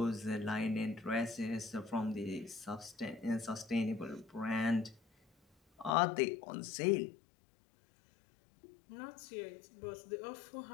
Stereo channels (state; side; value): drops out; right; at 5.9 s